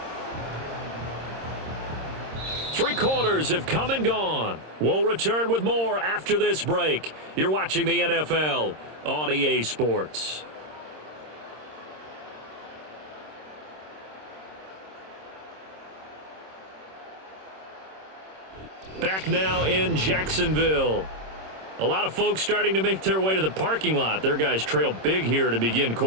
3 quarters have come and gone. We'll return with more after this break. You're watching the NFL on EA Sports. Back now in Jacksonville. A lot of folks starting to make their way to the parking lot. Their guys trail big here to begin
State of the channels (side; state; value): left; late; 26 ms